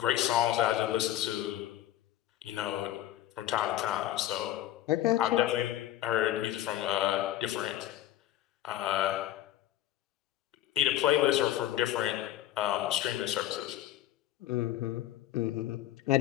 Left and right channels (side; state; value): right; quieter; 13.2 dB